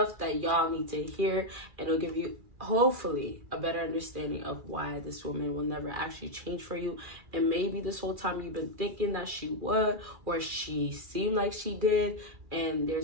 that y'all need to hear, and it'll give you hopefully a better understanding of why this woman will never actually change for you. And maybe this whole time you've been thinking that she would, or she seemed like she did, and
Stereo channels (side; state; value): left; late; 2.4 ms